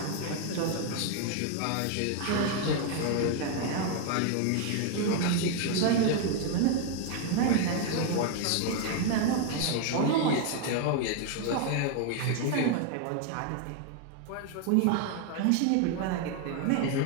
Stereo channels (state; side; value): different; both; correlation 0.01